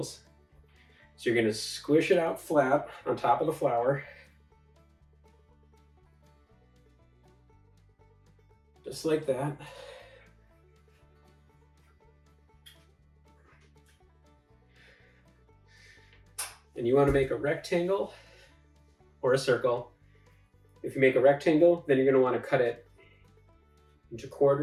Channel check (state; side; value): identical; both; correlation 1.00